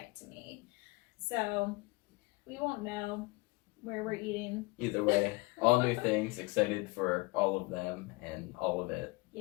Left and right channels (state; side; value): quieter; right; 24.7 dB